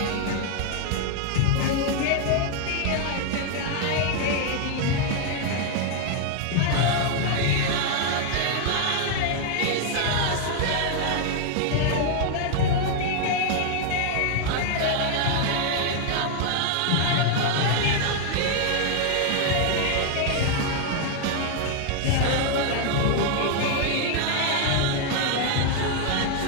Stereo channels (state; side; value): different; both; correlation 0.00